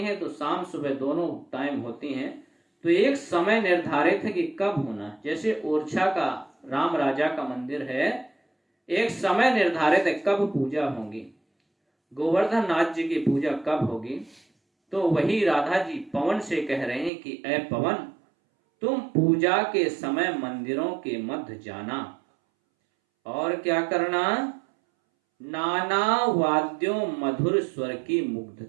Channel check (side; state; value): left; drops out; at 17.1 s